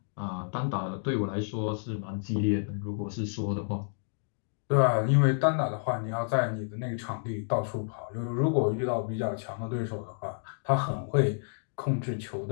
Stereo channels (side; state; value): right; silent; digital silence